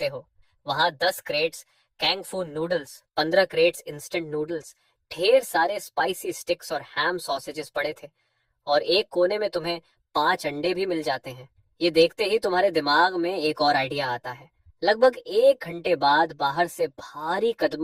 हो। वहां 10 क्रेट्स कैंग फू नूडल्स, 15 क्रेट्स इंस्टेंट नूडल्स, ढेर सारे स्पाइसी स्टिक्स और हैम सॉसेजेस पड़े थे, और एक कोने में तुम्हें 5 अंडे भी मिल जाते हैं। ये देखते ही तुम्हारे दिमाग में एक और आइडिया आता है। लगभग 1 घंटे बाद बाहर से भारी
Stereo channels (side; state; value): both; identical; correlation 1.00